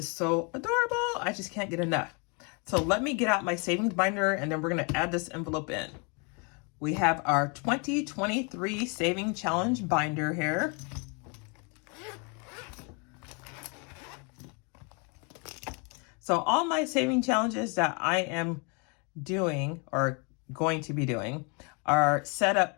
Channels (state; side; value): quieter; right; 33.7 dB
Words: so adorable. I just can't get enough. So let me get out my savings binder and then we're going to add this envelope in. We have our 2023 Saving Challenge binder here. So all my saving challenges that I am doing or going to be doing are set up